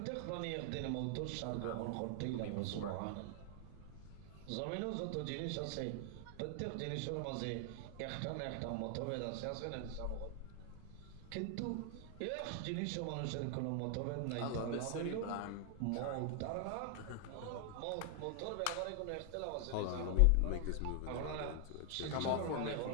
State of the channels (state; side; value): different; both; correlation 0.00